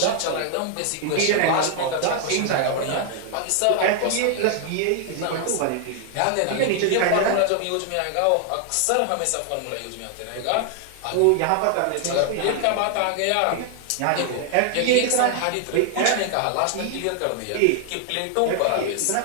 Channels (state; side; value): different; both; correlation 0.00